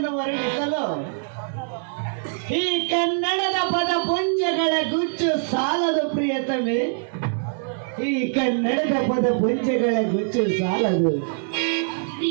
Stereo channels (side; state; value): left; silent; digital silence